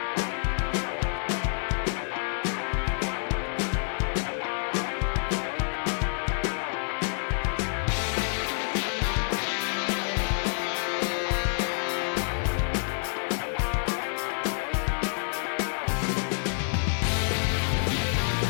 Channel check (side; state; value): right; silent; 59 dB below the other